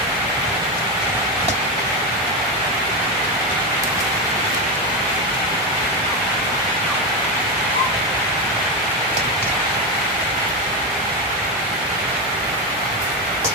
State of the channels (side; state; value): both; normal; correlation 0.12